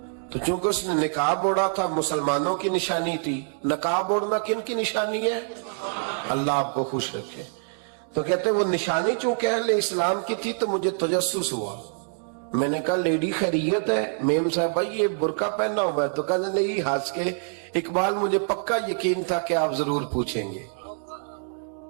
تو چونکہ اس نے نقاب اوڑھا تھا, مسلمانوں کی نشانی تھی. نقاب اوڑھنا کن کی نشانی ہے؟ اللہ آپ کو خوش رکھے. تو کہتے وہ نشانی چونکہ اہل اسلام کی تھی تو مجھے تجسس ہوا. میں نے کہا لیڈی خیریت ہے؟ میم صاحب بھائی یہ برقع پہنا ہوا ہے. تو کہنے لگی ہنس کے, اقبال مجھے پکا یقین تھا کہ آپ ضرور پوچھیں گے.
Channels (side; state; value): left; silent; digital silence